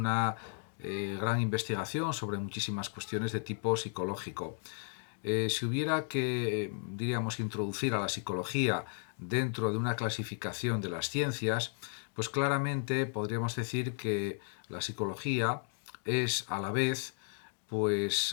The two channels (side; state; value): right; silent; 55 dB below the other